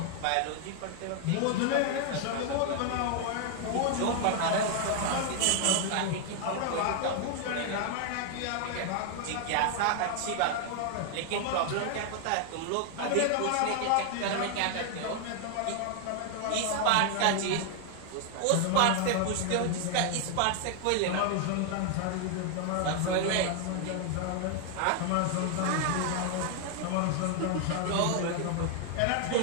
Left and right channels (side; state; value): both; different; correlation 0.00